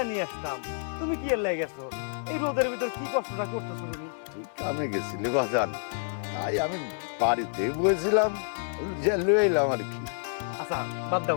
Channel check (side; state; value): right; silent; 59 dB below the other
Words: নিয়ে আসতাম, তুমি কি এর লাগে গেছো? এই রোদের ভিতর কি কষ্টটা করতেছো তুমি? তুই কামে গেছিলে বাজান, তাই আমি বাড়িতে বসেছিলাম, যে লয়ে এলাম আর কি। আচ্ছা বাদ